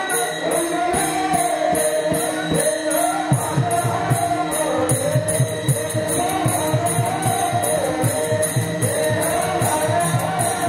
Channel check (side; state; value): both; identical; correlation 1.00